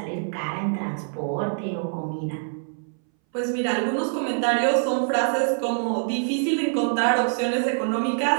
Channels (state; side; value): silent; left; 61 dB below the other